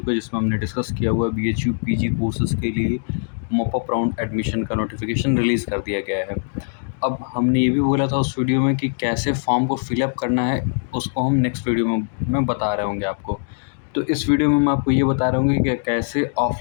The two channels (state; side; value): silent; right; digital silence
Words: को, जिसमें हमने डिस्कस किया हुआ बीएचयू पीजी कोर्सेज़ के लिए मॉप अप राउंड एडमिशन का नोटिफिकेशन रिलीज़ कर दिया गया है। अब हमने ये भी बोला था उस वीडियो में कि कैसे फॉर्म को फिलअप करना है, उसको हम नेक्स्ट वीडियो में मैं बता रहे होंगे आपको। तो इस वीडियो में मैं आपको ये बता रहा हूँ कि कैसे